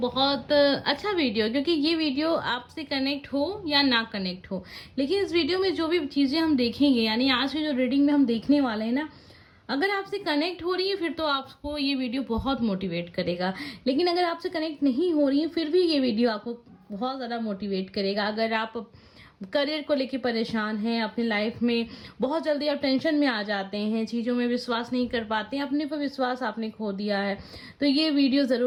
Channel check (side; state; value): both; identical; correlation 1.00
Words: अच्छा वीडियो, क्योंकि ये वीडियो आपसे कनेक्ट हो या ना कनेक्ट हो, लेकिन इस वीडियो में जो भी चीज़ें हम देखेंगे, यानी आज की जो रीडिंग में हम देखने वाले हैं ना, अगर आपसे कनेक्ट हो रही है फिर तो आपको ये वीडियो बहुत मोटिवेट करेगा। लेकिन अगर आपसे कनेक्ट नहीं हो रही है फिर भी ये वीडियो आपको बहुत ज़्यादा मोटिवेट करेगा। अगर आप करियर को लेके परेशान हैं, अपनी लाइफ में बहुत जल्दी आप टेंशन में आ जाते हैं, चीज़ों में विश्वास नहीं कर पाते हैं, अपने पर विश्वास आपने खो दिया है, तो ये वीडियो